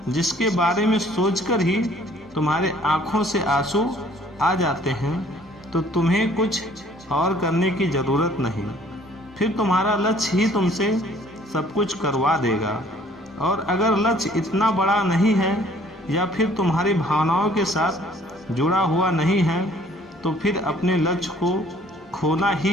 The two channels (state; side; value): normal; both; correlation 0.57